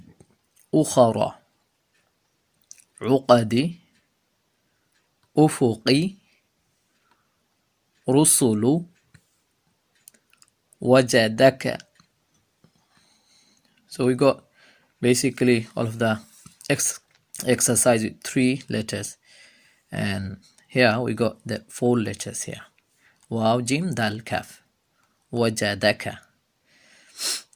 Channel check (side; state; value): both; identical; correlation 1.00